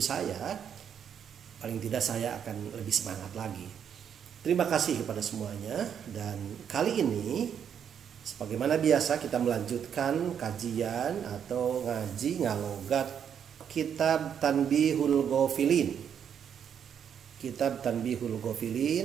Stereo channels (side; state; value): left; quieter; 8.2 dB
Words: saya, paling tidak saya akan lebih semangat lagi. Terima kasih kepada semuanya. Dan kali ini sebagaimana biasa kita melanjutkan kajian atau ngaji ngalogat Kitab Tanbihul Ghafilin. Kitab Tanbihul